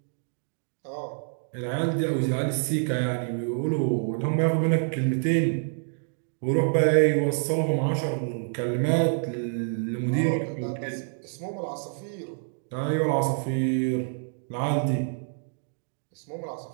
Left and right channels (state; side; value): silent; left; digital silence